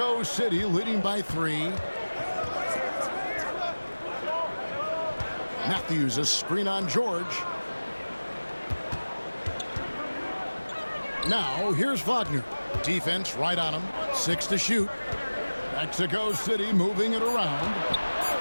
City leading by 3. Matthews, a screen on George. Now, here's Wagner. Defense right on him. 6 to shoot. Mexico City moving it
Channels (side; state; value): both; inverted; correlation -1.00